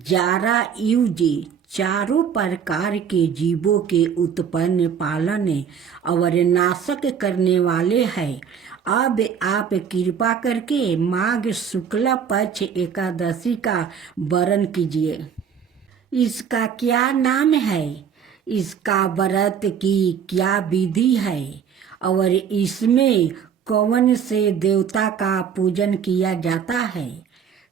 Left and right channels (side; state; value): left; quieter; 7.6 dB